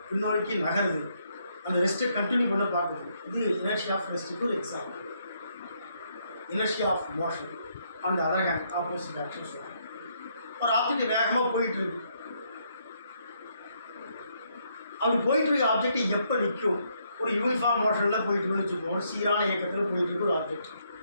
பின்னோக்கி நகருது. அந்த ரெஸ்ட்டை கண்டினியூ பண்ண பார்க்குது. இது இனர்ஷியா ஆஃப் ரெஸ்ட்டுக்கு ஒரு எக்ஸாம்பிள். இனர்ஷியா ஆஃப் மோஷன் அந்த அதர் ஹேண்ட் ஆப்போசிட் ஆக்ஷன் சொல்லுவாங்க. ஒரு ஆப்ஜெக்ட் வேகமாக போயிட்டு இருக்கு, அப்படி போயிட்டு இருக்க ஆப்ஜெக்ட் எப்போ நிற்கும்? ஒரு யூனிஃபார்ம் மோஷனில் போயிட்டு இருக்குன்னு வச்சுக்கோங்க, ஒரு சீரான இயக்கத்தில் போயிட்டு இருக்க ஒரு ஆப்ஜெக்ட்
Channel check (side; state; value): both; inverted; correlation -0.74